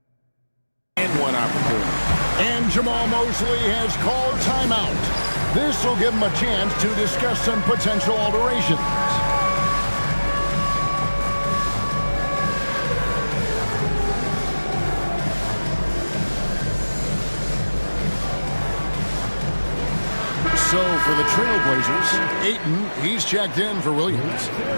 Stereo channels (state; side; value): inverted; both; correlation -1.00